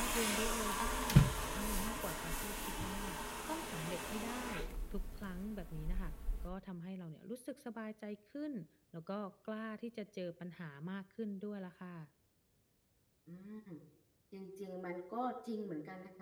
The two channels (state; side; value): identical; both; correlation 1.00